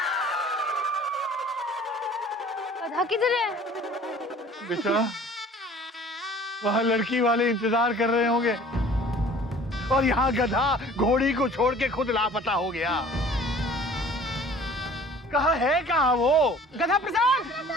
गधा किधर है? बेटा वहाँ लड़की वाले इंतजार कर रहे होंगे और यहाँ गधा घोड़ी को छोड़ के खुद लापता हो गया। कहाँ है कहाँ वो? गधा प्रसाद,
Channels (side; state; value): both; normal; correlation 0.49